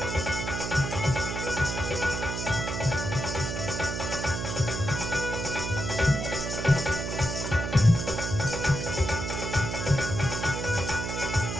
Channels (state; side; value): noise; right; hum, 4 dB below the sound